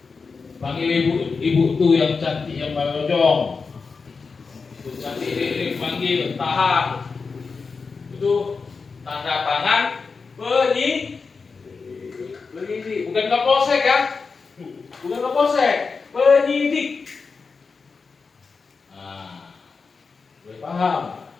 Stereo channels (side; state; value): right; quieter; 4.8 dB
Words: panggil ibu tuh yang cantik yang balojong, itu cantik ini panggil, tahan, itu tanda tangan penyidik, bukan Kapolsek ya, bukan Kapolsek, penyidik. Nah, boleh paham?